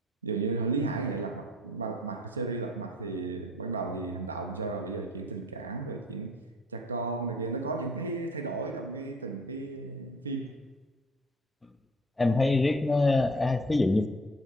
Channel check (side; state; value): both; normal; correlation 0.50